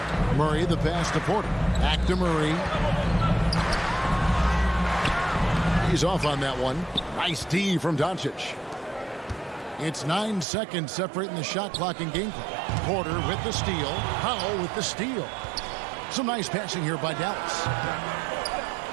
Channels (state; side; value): drops out; left; at 10.5 s